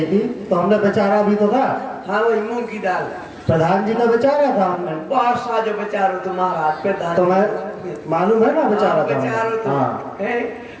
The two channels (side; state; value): both; identical; correlation 1.00